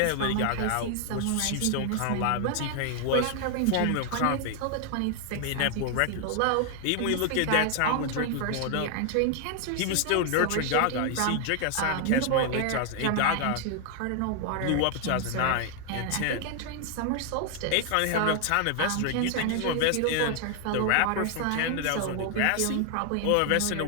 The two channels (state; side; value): different; both; correlation 0.00